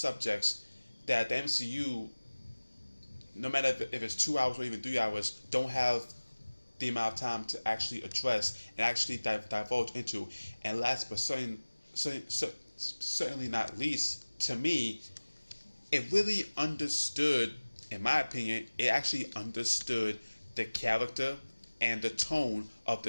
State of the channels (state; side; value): inverted; both; correlation -1.00